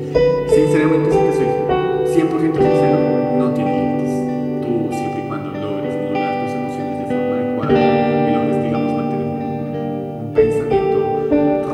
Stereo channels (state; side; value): identical; both; correlation 1.00